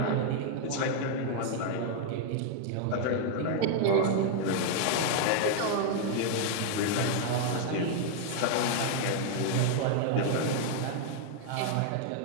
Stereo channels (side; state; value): both; different; correlation 0.00